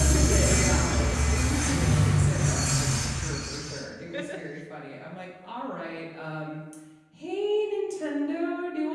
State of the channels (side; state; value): both; identical; correlation 1.00